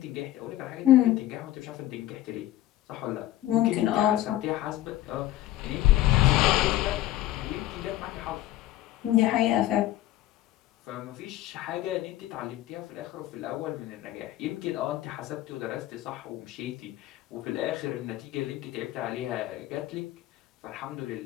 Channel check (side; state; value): right; quieter; 14.6 dB